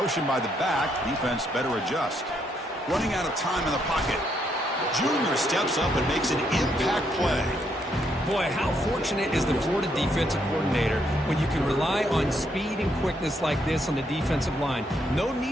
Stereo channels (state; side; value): normal; both; correlation 0.75